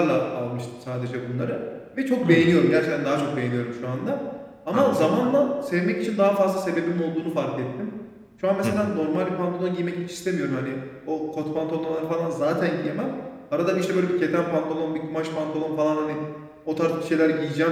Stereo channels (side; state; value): both; identical; correlation 1.00